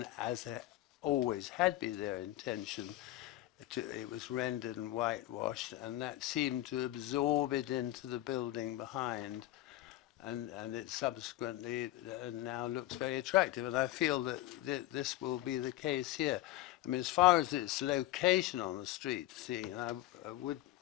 as always had been their intention, it was rendered and whitewashed, and that seemed to absorb it into the building behind, and it subsequently now looks very attractive. And I feel that this will be the case here. I mean, as far as its location on the street scene, I would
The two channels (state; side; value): quieter; right; 15.6 dB